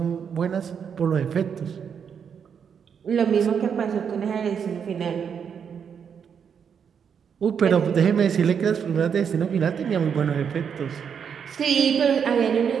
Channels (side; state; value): left; quieter; 7.2 dB